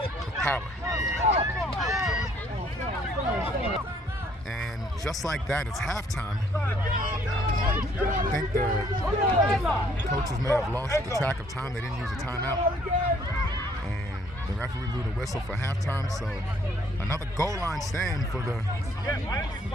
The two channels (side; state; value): both; normal; correlation 0.63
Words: with power. And just like that, it's halftime. I think the coaches may have lost the track of time. They didn't use a timeout. And the referee blew the whistle for halftime. So another goal line stand for the